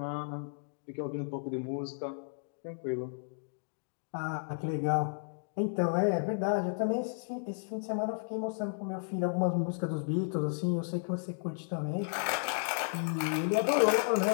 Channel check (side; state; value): right; silent; digital silence